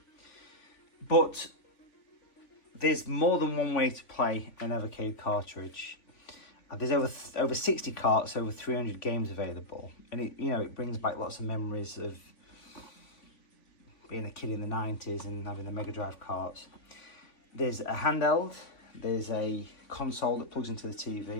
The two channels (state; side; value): late; right; 3.5 ms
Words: but there's more than one way to play an Evercade cartridge. There's over 60 carts, over 300 games available, and it brings back lots of memories of being a kid in the 90s and having the Mega Drive carts. There's a handheld, there's a console that plugs into the